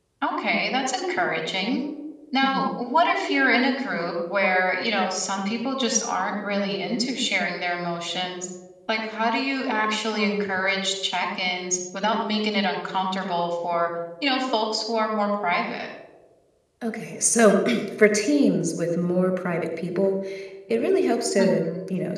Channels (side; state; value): both; identical; correlation 1.00